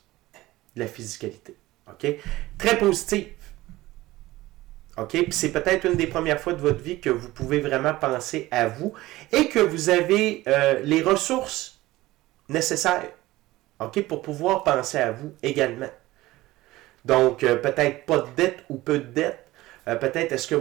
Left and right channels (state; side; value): quieter; left; 17.9 dB